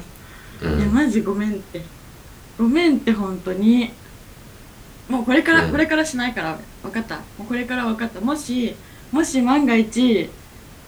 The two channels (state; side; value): identical; both; correlation 1.00